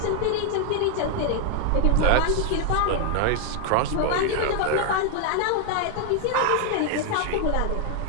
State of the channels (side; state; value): both; different; correlation 0.01